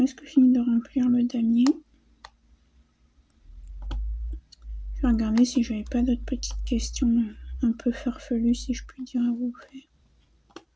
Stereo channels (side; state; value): both; identical; correlation 1.00